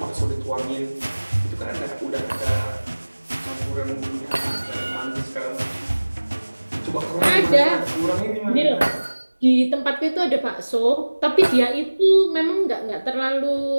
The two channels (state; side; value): inverted; both; correlation -1.00